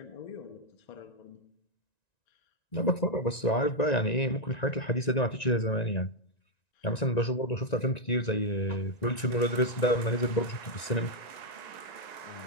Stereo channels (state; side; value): late; right; 1.9 ms